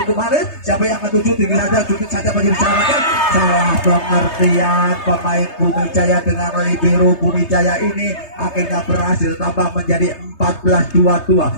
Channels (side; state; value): right; late; 3.3 ms